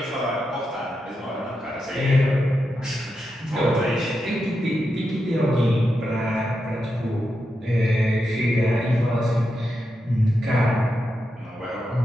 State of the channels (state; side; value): normal; both; correlation 0.87